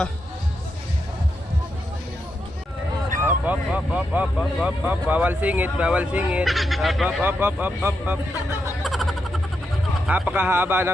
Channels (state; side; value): normal; both; correlation 0.84